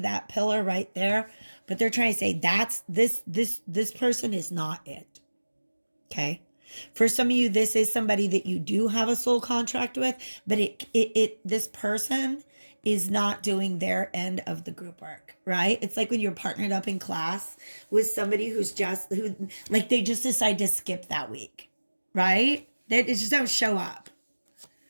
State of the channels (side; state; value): both; inverted; correlation -1.00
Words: that pillar right there, but they're trying to say that's this person is not it. Okay? For some of you, this is somebody that you do have a soul contract with, but this person is not doing their end of the group work, right? It's like when you're partnered up in class with somebody who they just decide to skip that week, right? They just don't show up.